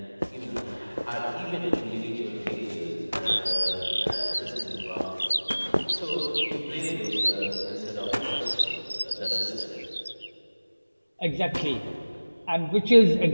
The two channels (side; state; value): both; inverted; correlation -1.00